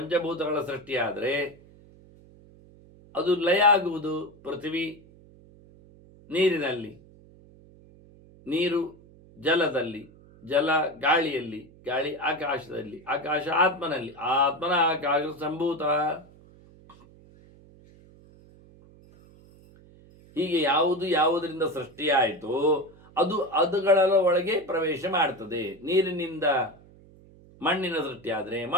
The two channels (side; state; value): right; noise; hum, 24 dB below the sound